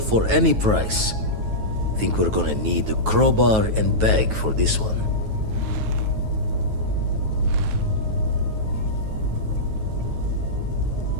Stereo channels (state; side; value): late; left; 9.3 ms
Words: for any price. Think we're gonna need a crowbar and bag for this one.